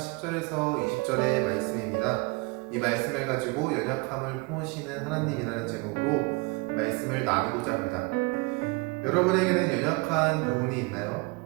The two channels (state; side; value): quieter; left; 27.3 dB